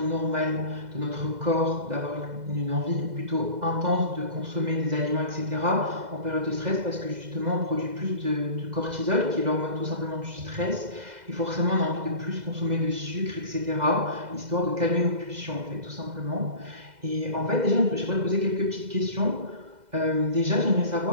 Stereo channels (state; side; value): late; left; 2.0 ms